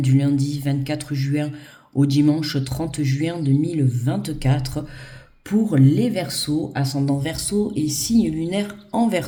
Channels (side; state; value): both; identical; correlation 1.00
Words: du lundi 24 juin au dimanche 30 juin 2024 pour les Verseaux, ascendant Verseau et signe lunaire en